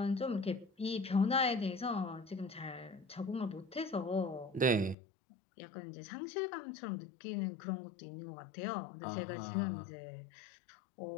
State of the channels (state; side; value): drops out; right; at 5.0 s